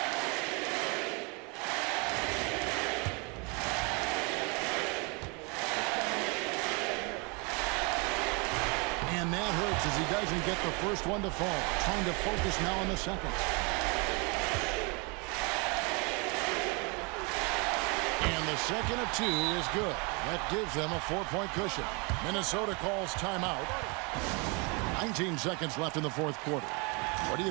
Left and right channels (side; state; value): left; quieter; 31.1 dB